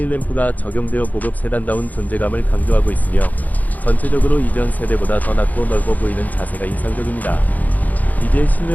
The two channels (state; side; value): late; right; 0.080 ms